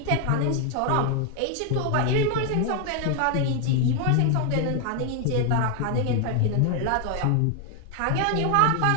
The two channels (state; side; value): different; both; correlation 0.00